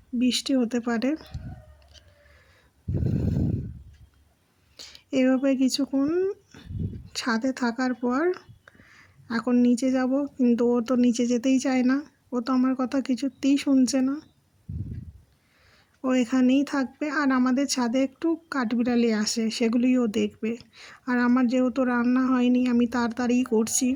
বৃষ্টি হতে পারে। এভাবে কিছুক্ষণ ছাদে থাকার পর এখন নিচে যাব, কিন্তু ও তো নিচে যেতেই চায় না। ও তো আমার কথা কিছুতেই শুনছে না, ও এখানেই থাকবে। আর আমাদের ছাদে একটু কাঠবিড়ালি আসে, সেগুলিও ও দেখবে। আর আমার যেহেতু রান্না হয়নি, আমি তাড়াতাড়ি করছি।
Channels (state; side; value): identical; both; correlation 1.00